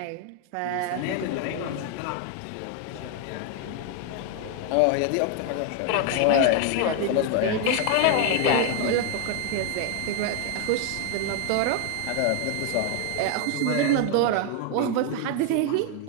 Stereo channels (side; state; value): both; different; correlation 0.01